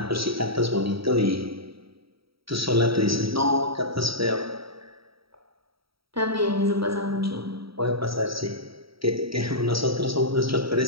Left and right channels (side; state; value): left; late; 0.75 ms